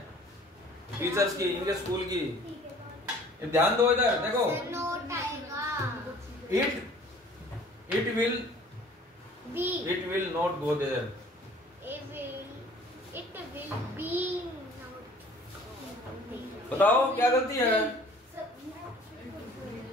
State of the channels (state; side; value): normal; both; correlation 0.51